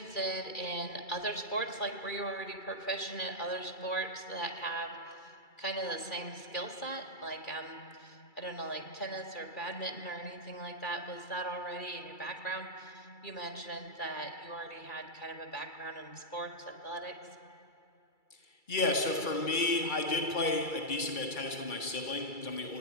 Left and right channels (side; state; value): right; late; 2.3 ms